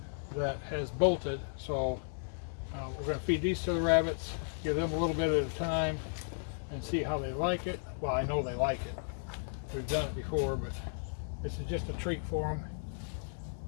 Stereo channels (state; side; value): silent; right; digital silence